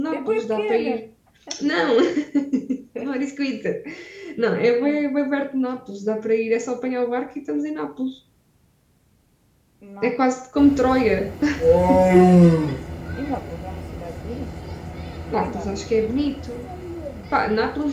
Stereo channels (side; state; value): both; identical; correlation 1.00